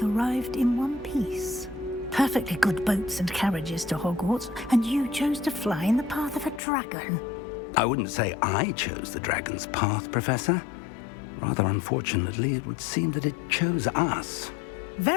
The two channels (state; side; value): drops out; right; at 6.6 s